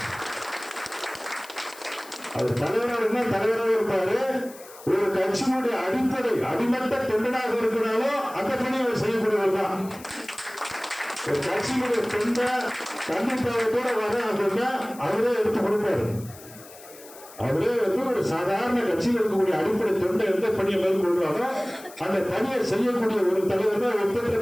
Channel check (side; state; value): left; noise; hiss, 19 dB below the sound